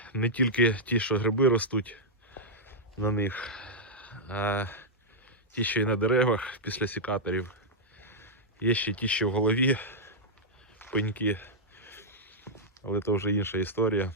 Не тільки ті, що гриби ростуть на них, а ті, що і на деревах після сікаторів. Є ще ті, що в голові пеньки, але це вже інша історія.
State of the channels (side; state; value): both; normal; correlation -0.05